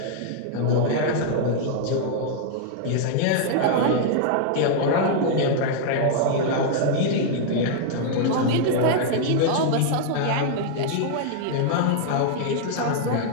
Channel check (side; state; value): both; different; correlation -0.01